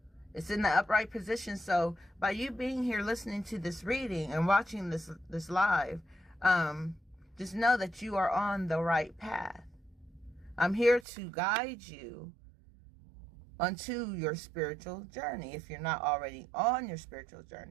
It's in the upright position. So by you being here listening to this reading and watching this live, just know that you are on the right path. I'm here to guide you onto your spiritual journey. If you're not already on your spiritual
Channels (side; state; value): left; drops out; at 11.1 s